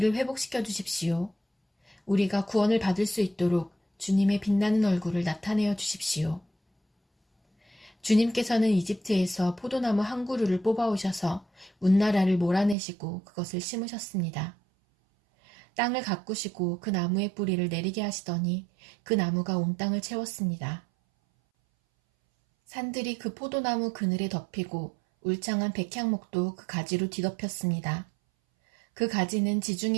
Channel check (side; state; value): left; drops out; at 12.8 s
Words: 회복시켜 주십시오. 우리가 구원을 받을 수 있도록 주님의 빛나는 얼굴을 나타내어 주십시오. 주님께서는 이집트에서 포도나무 한 그루를 뽑아오셔서 문나라를 몰아내시고 그것을 심으셨습니다. 땅을 가꾸시고 그 나무의 뿌리를 내리게 하시더니 그 나무가 온 땅을 채웠습니다. 산들이 그 포도나무 그늘에 덮이고 울창한 백향목도 그 가지로 뒤덮였습니다. 그 가지는